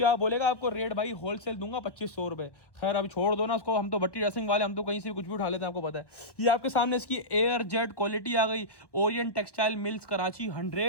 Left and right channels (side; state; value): right; late; 1.1 ms